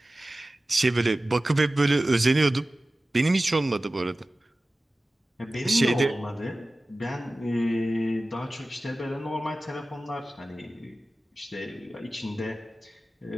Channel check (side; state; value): both; normal; correlation 0.96